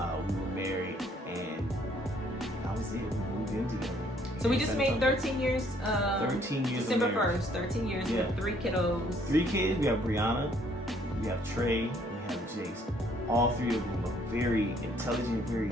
were married, and that was it. We moved in together. So we just made 13 years. 13 years. December 1st, 13 years with 3 kiddos. 3 kids. We have Brianna, we have Trey, and we have Jace. All 3 of them are very intelligent,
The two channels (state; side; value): normal; both; correlation 0.64